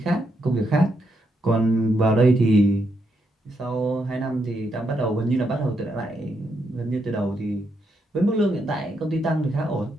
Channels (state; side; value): normal; both; correlation 0.80